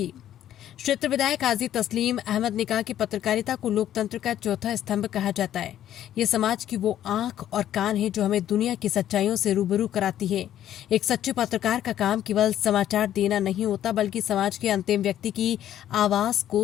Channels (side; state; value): right; quieter; 11.5 dB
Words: क्षेत्र विधायक हाजी तस्लीम अहमद ने कहा कि पत्रकारिता को लोकतंत्र का चौथा स्तंभ कहा जाता है। ये समाज की वो आंख और कान है जो हमें दुनिया की सच्चाइयों से रूबरू कराती है। एक सच्चे पत्रकार का काम केवल समाचार देना नहीं होता, बल्कि समाज के अंतिम व्यक्ति की आवाज